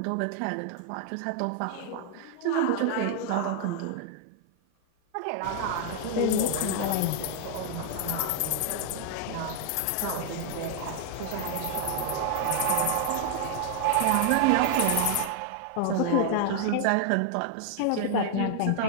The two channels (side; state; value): both; different; correlation 0.00